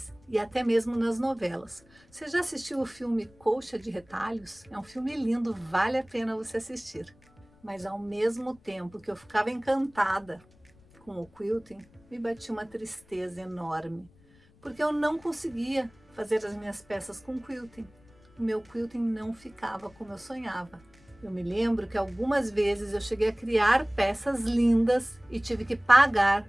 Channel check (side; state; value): left; noise; rumble, 29 dB below the sound